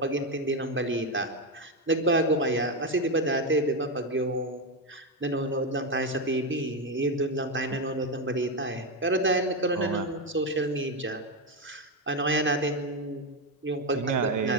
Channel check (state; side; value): normal; both; correlation 0.09